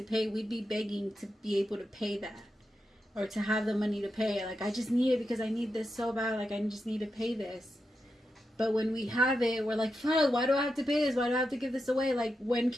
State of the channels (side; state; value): both; normal; correlation 0.88